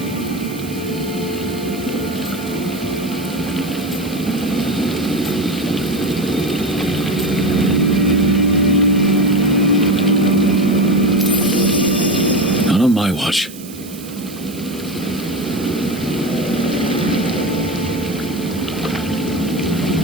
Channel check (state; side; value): noise; right; hiss, 17 dB below the sound